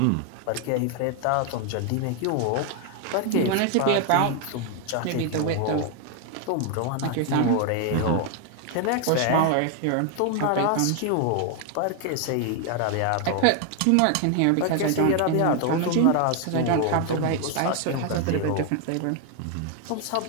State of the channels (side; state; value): both; different; correlation 0.00